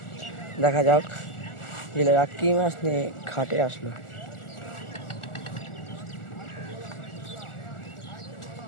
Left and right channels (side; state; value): right; late; 1.4 ms